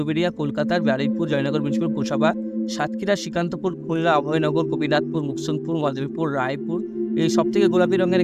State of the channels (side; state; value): both; identical; correlation 1.00